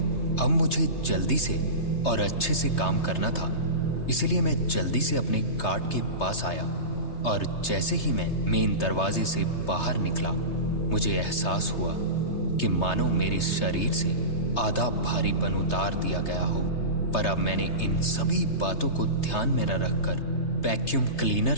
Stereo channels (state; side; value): late; right; 3.3 ms